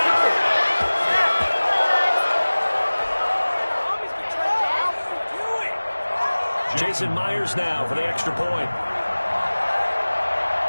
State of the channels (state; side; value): inverted; both; correlation -1.00